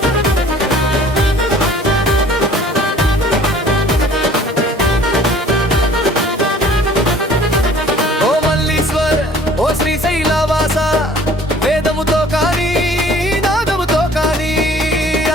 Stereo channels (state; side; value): normal; both; correlation 0.51